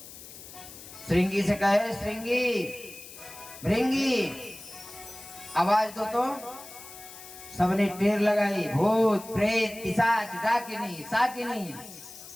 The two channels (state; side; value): noise; left; hiss, 16 dB below the sound